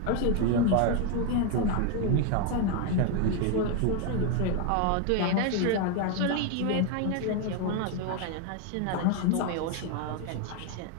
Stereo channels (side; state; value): both; different; correlation 0.01